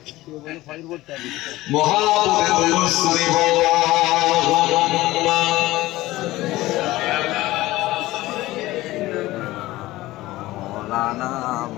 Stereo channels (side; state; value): right; quieter; 17.6 dB